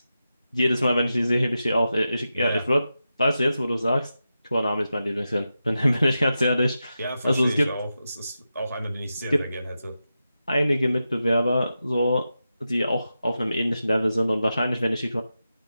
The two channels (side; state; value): both; inverted; correlation -0.90